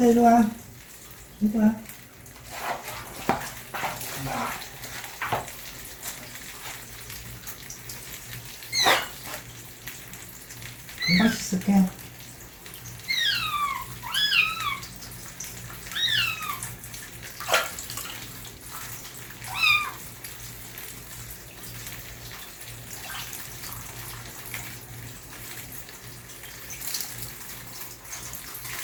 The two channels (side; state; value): both; identical; correlation 1.00